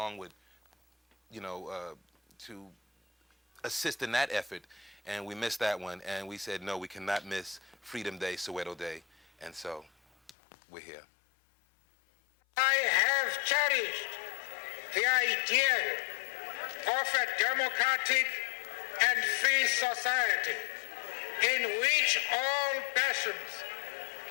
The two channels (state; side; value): drops out; right; at 10.3 s